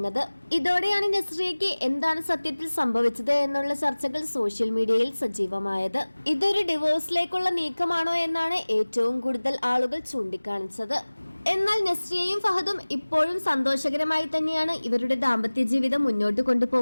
ഇതോടെയാണ് നസ്രിയയ്ക്ക് എന്താണ് സത്യത്തിൽ സംഭവിച്ചത് എന്നുള്ള ചർച്ചകൾ സോഷ്യൽ മീഡിയയിൽ സജീവമായത്. ഇതൊരു ഡിവോഴ്സിലേക്കുള്ള നീക്കമാണോ എന്നാണ് ഏറ്റവും കൂടുതൽ ആളുകൾ ചൂണ്ടിക്കാണിച്ചത്. എന്നാൽ നസ്രിയയും ഫഹദും ഇപ്പോഴും സന്തോഷകരമായി തന്നെയാണ് ഇവരുടെ ദാമ്പത്യ ജീവിതം മുന്നോട്ട്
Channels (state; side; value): inverted; both; correlation -1.00